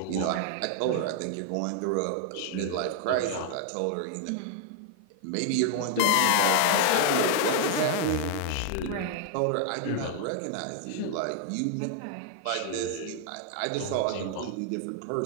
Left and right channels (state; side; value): different; both; correlation 0.00